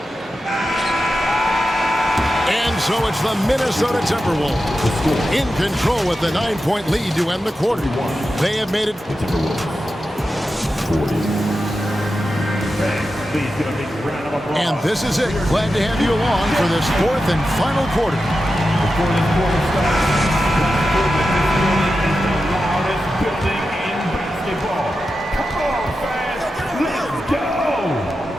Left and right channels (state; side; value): normal; both; correlation 0.91